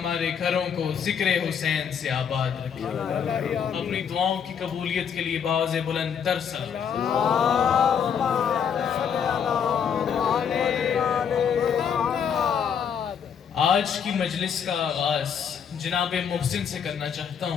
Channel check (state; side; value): quieter; right; 7.5 dB